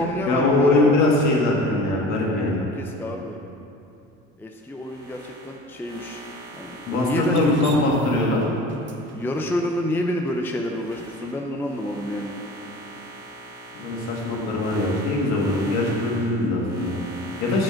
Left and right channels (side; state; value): both; normal; correlation 0.40